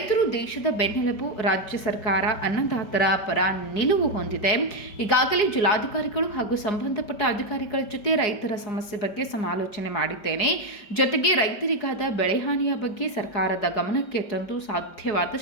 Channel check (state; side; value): late; right; 4.8 ms